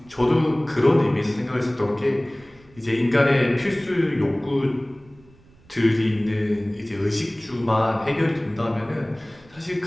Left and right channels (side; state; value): right; noise; rumble, 28 dB below the sound